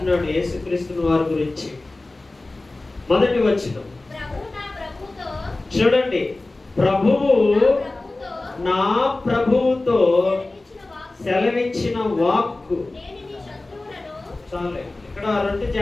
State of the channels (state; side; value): quieter; right; 3.0 dB